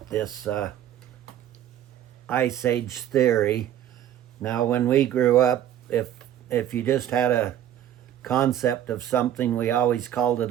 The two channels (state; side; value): quieter; left; 11.1 dB